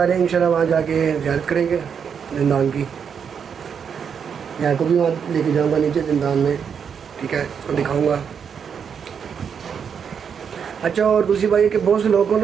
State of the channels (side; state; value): left; quieter; 7.1 dB